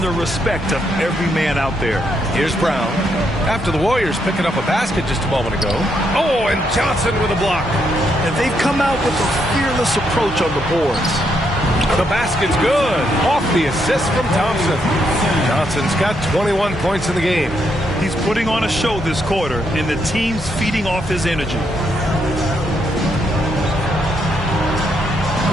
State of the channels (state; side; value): normal; both; correlation 0.77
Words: the respect of every man out there. Here's Brown. After the Warriors picking up a basket just a moment ago. Oh, and Johnson with a block. And they've come out with a fearless approach on the boards. The basket's good. Off the assist from Thompson. Johnson's got 21 points in the game. He's putting on a show this quarter, and the team's feeding off his energy.